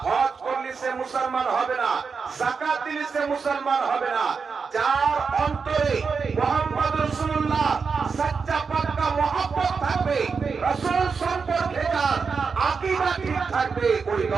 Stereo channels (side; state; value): left; quieter; 5.3 dB